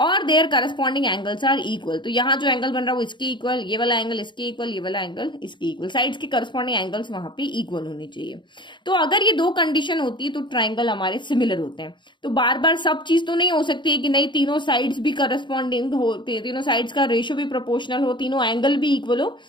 their corresponding angles are equal, तो यहाँ जो एंगल बन रहा है वो इसके इक्वल, ये वाला एंगल इसके इक्वल, ये वाला एंगल इसके इक्वल, साइड्स के करस्पॉन्डिंग एंगल्स वहां पे इक्वल होनी चाहिए। तो अगर ये दो कंडीशन होती है तो ट्राइंगल हमारे सिमिलर होते हैं। तो बार बार सब चीज तो नहीं हो सकती है कि नहीं तीनों साइड्स भी करस्पॉन्डिंग हो, तीनों साइड्स का रेशियो भी प्रोपोर्शनल हो, तीनों एंगल भी इक्वल हो।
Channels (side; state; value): right; late; 0.23 ms